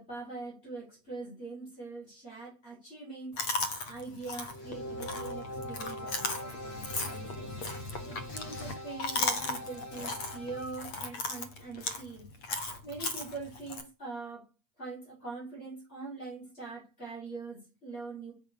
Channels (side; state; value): right; late; 8.4 ms